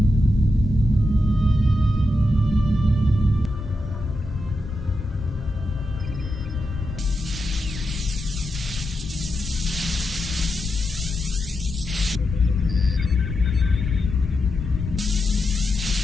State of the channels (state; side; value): normal; both; correlation 0.86